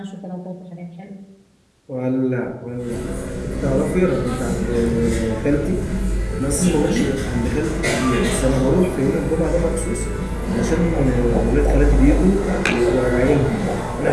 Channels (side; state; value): both; identical; correlation 1.00